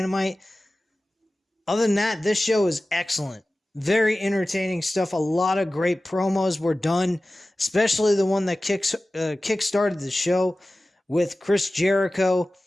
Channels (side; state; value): both; normal; correlation 0.96